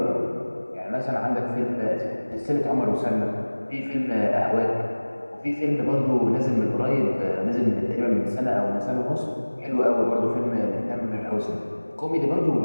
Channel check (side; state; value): both; inverted; correlation -1.00